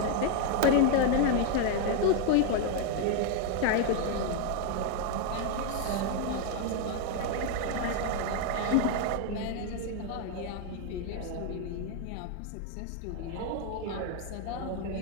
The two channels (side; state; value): both; different; correlation 0.01